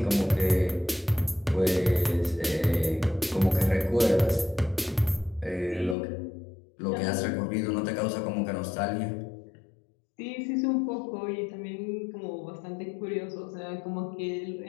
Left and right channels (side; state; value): right; drops out; at 6.0 s